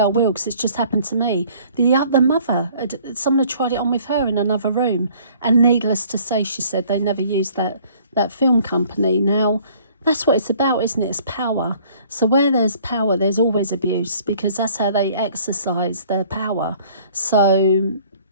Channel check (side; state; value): both; inverted; correlation -0.56